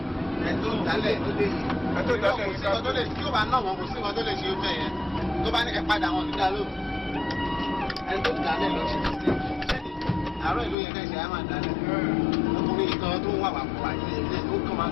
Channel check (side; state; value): right; drops out; at 10.8 s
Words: Ẹ̀tọ́ ìdálẹ̀ ló dé yìí. Ẹ̀tọ́ ìdálẹ̀ kò sí nǹkan tó lè tí ó bá náà wọn kò sí nǹkan tó lè ṣe ó bẹ́ẹ̀ yẹn. Tó bá ní ẹ padà wọn nígbà ló. Ẹ̀tọ́ ìdálẹ̀ ló ṣe ti ṣe. Àárọ̀ ìlú yẹn kẹ́sì á máa dálẹ̀. Ọkùnrin kan tó ń wà wà fún àti ilé ó kàn máa